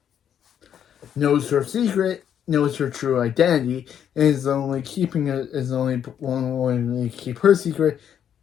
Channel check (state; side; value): quieter; right; 9.1 dB